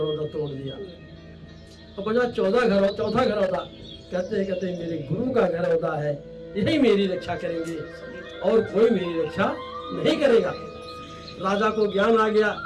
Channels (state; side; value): identical; both; correlation 1.00